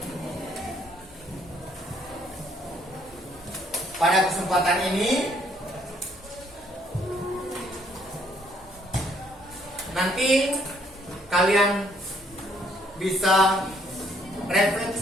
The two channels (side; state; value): both; normal; correlation 0.67